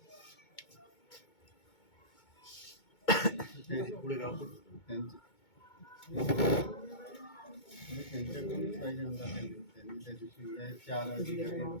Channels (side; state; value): right; late; 2.2 ms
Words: त्यांच्याकडूनच पाहिजे आमचा त्यांनी त्या दिवशी 4 अधिकारी